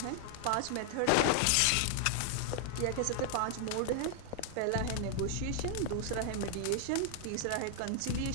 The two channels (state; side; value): different; both; correlation 0.00